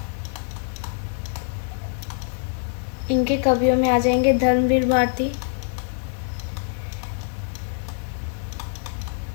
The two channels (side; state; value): right; silent; 62 dB below the other